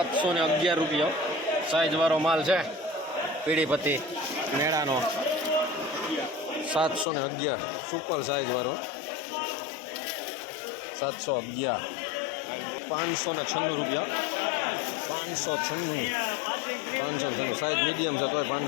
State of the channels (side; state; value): right; drops out; at 7.1 s